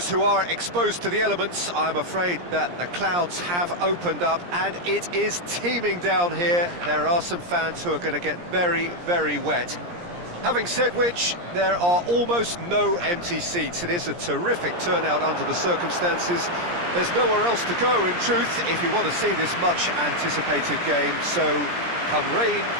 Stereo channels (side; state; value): left; late; 17 ms